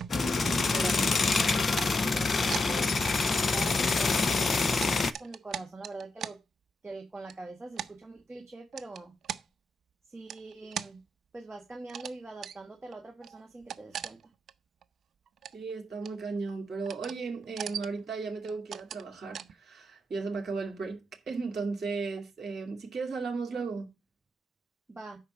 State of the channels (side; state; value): both; normal; correlation 0.84